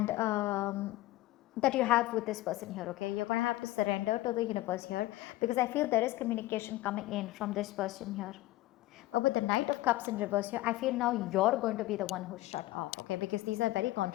that you have with this person here. Okay, you're going to have to surrender to the universe here, because I feel there is communication coming in from this person here. But with the Knight of Cups in reverse here, I feel now you're going to be the one who's shut off. Okay, because these are very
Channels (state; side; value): quieter; right; 17.3 dB